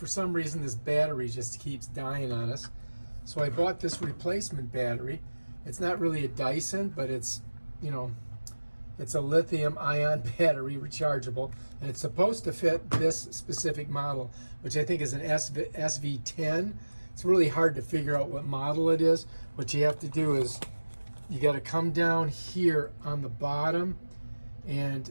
some reason this battery just keeps dying on us. So I bought this replacement battery. It's not really a Dyson, but it's, it's a lithium ion battery, rechargeable, and it's supposed to fit this specific model, which I think is an SV10. It's really hard to figure out what model it is. What you have to do is you got to come down here on the bottom,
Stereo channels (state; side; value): inverted; both; correlation -1.00